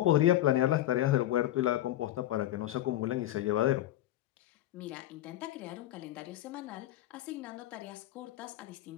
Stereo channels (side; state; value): right; quieter; 14.0 dB